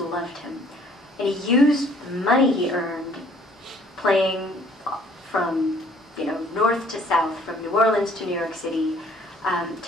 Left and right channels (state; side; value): normal; both; correlation 0.58